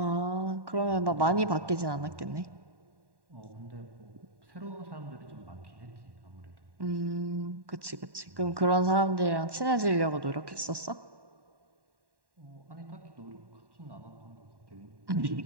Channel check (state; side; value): late; left; 1.1 ms